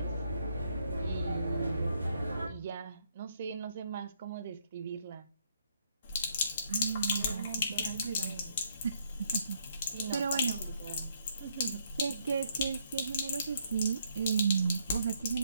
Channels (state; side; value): inverted; both; correlation -0.71